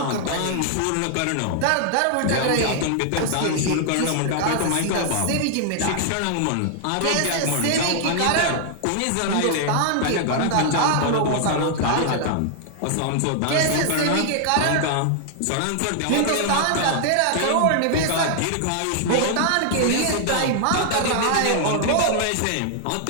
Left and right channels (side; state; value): both; different; correlation 0.00